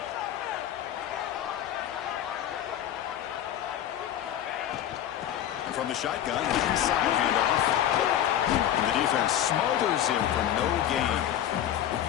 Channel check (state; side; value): quieter; right; 11.0 dB